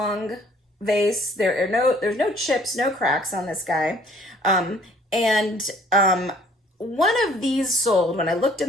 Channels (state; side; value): normal; both; correlation 0.57